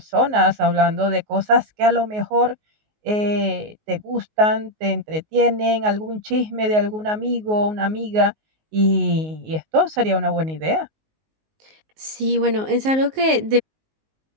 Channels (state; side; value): late; left; 19 ms